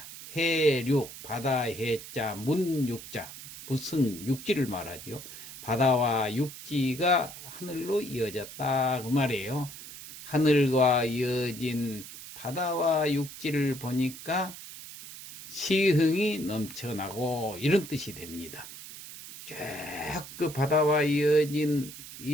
해륙 바다 해자 문육자. 무슨 육지를 말하지요? 바다와 육지가 하늘로 이어졌다 그 말이에요. 하늘과 이어진 바다와 육지를 보니까 시흥이 넘쳐나고 이런 뜻이 됩니다. 쭉 그 바다와 이어진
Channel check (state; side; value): noise; right; hiss, 13 dB below the sound